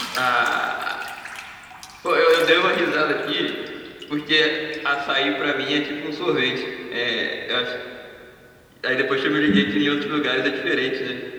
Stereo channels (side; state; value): both; identical; correlation 1.00